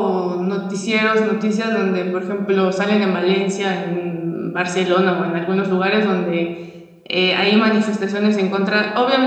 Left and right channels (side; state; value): both; identical; correlation 1.00